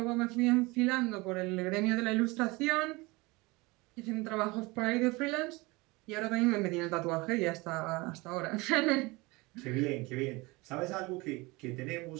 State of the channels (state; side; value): quieter; left; 23.8 dB